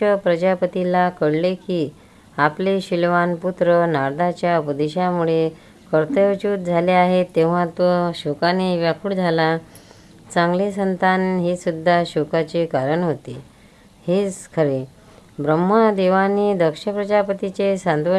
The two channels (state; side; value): identical; both; correlation 1.00